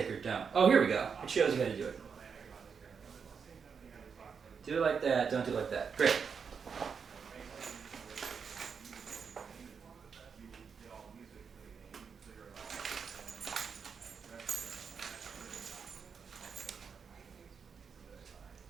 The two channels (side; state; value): left; quieter; 6.2 dB